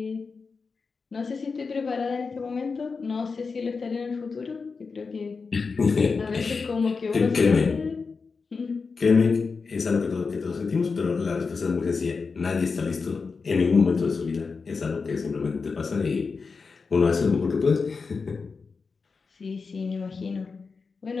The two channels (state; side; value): quieter; right; 4.8 dB